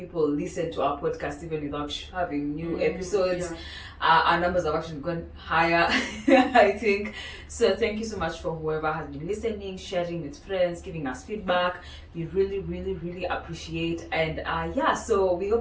listen to our podcast even without having new episodes. Our numbers have actually gone higher, I think. So thank you so much for whoever has been listening, sharing with friends, giving us feedback. We really, really, really appreciate. And so we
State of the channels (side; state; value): both; identical; correlation 1.00